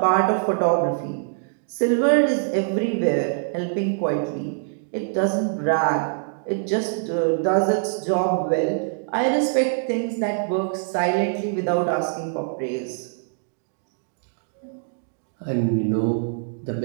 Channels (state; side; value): silent; left; digital silence